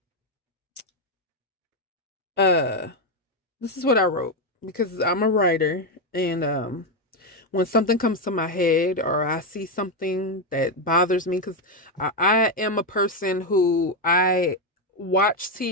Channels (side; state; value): both; normal; correlation 0.07